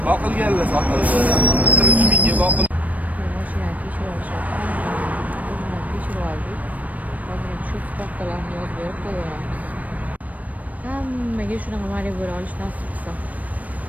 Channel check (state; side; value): late; left; 0.071 ms